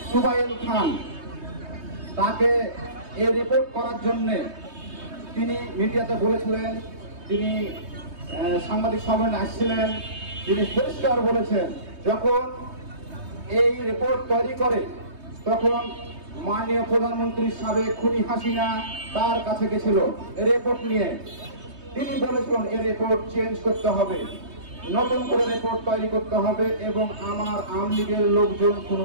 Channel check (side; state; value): left; late; 3.2 ms